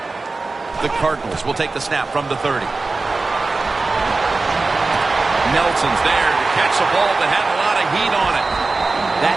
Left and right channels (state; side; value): quieter; left; 3.6 dB